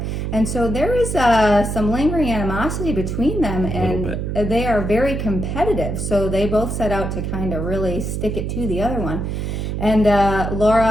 And so there is some lingering animosity between them, and they are very competitive. So they both set out to kind of really stick it to the other one. And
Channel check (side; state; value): right; noise; hum, 3 dB below the sound